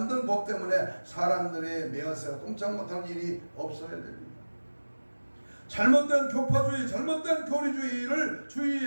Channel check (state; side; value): inverted; both; correlation -1.00